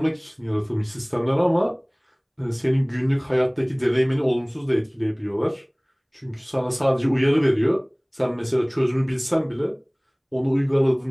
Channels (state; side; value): identical; both; correlation 1.00